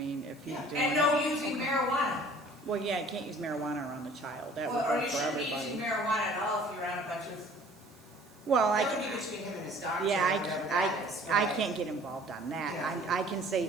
if he's doing. And no using marijuana. Well, yeah, you can't use marijuana around the child, that would Or work you for shouldn't be using everybody. marijuana at all if you're on a bunch of. Well, That would be between him and his doctor. yeah, or whatever that is, I but- can't get involved on that. Yeah. I can say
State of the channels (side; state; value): right; noise; hiss, 28 dB below the sound